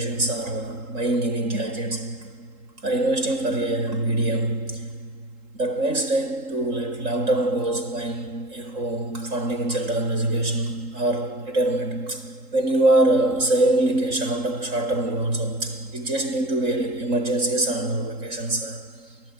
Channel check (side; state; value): left; late; 3.8 ms